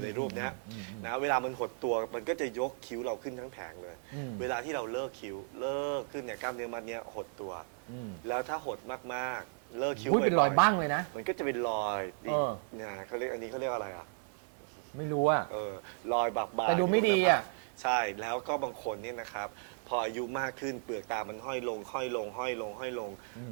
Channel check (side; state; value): left; silent; 55 dB below the other